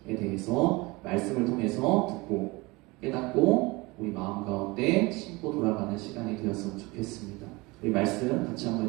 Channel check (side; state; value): left; quieter; 23.9 dB